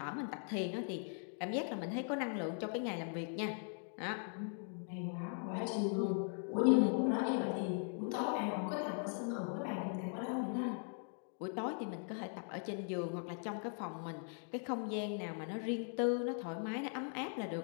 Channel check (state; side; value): silent; right; 51 dB below the other